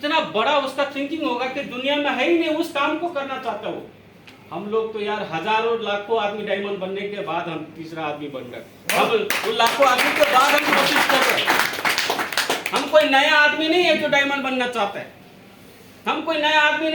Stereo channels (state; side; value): identical; both; correlation 1.00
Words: बड़ा उसका थिंकिंग होगा कि दुनिया में है ही नहीं, उस काम को करना चाहता हो। हम लोग तो यार हजारों लाखों आदमी डायमंड बनने के बाद हम तीसरा आदमी बन गए। हम उन लाखों आदमी के बाद हम कोशिश कर रहे हैं। हम कोई नया आदमी नहीं है जो डायमंड बनना चाहता है। हम कोई नया आदमी